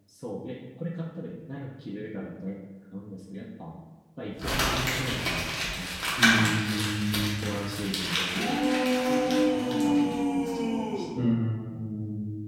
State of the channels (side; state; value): both; identical; correlation 1.00